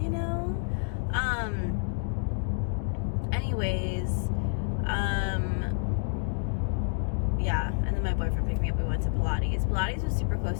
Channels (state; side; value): silent; right; 59 dB below the other